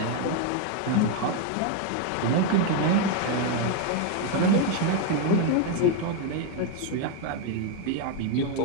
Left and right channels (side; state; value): both; different; correlation 0.01